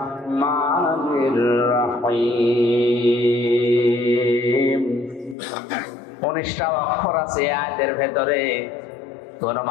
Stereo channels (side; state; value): right; drops out; at 5.4 s